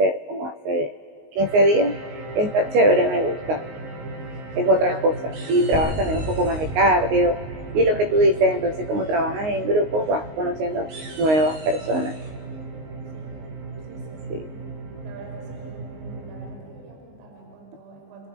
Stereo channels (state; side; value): late; left; 19 ms